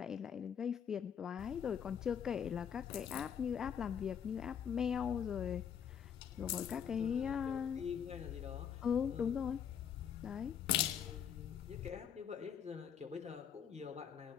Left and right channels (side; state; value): right; quieter; 8.1 dB